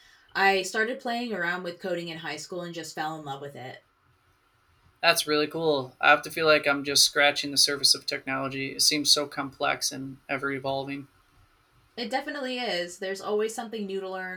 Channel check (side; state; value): both; identical; correlation 1.00